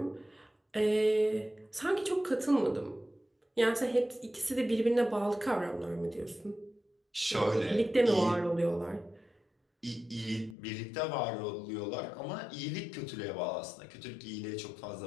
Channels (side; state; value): right; drops out; at 10.6 s